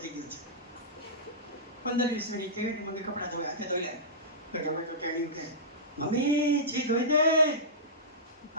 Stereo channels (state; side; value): normal; both; correlation -0.17